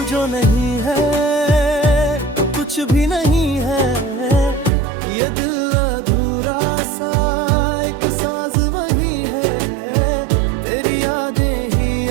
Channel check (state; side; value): drops out; left; at 4.7 s